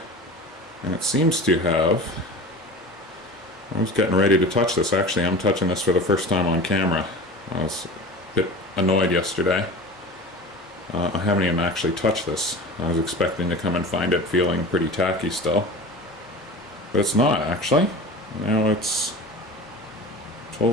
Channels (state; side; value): normal; both; correlation 0.35